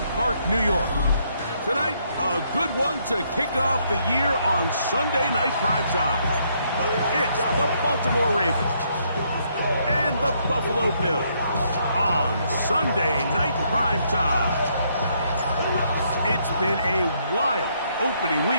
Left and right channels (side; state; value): both; inverted; correlation -0.72